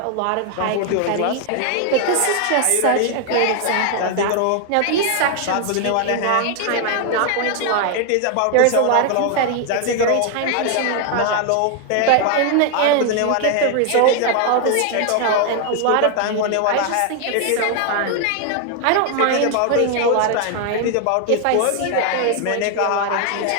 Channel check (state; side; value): different; both; correlation 0.00